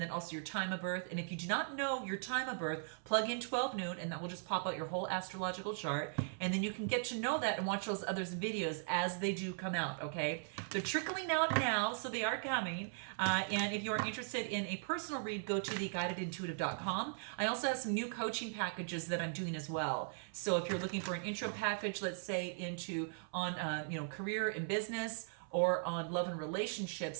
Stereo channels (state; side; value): silent; left; 52 dB below the other